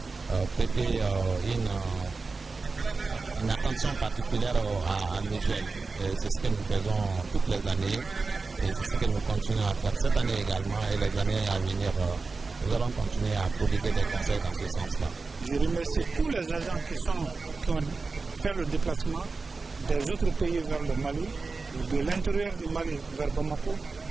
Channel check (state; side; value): quieter; left; 4.1 dB